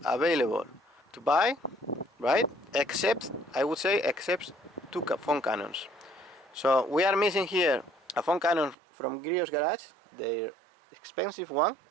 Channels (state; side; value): drops out; left; at 8.8 s